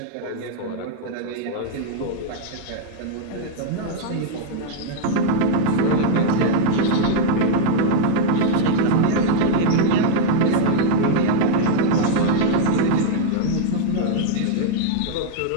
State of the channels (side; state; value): both; different; correlation -0.01